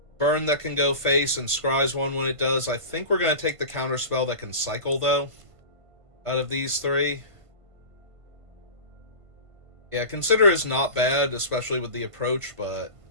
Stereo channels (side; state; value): left; late; 1.5 ms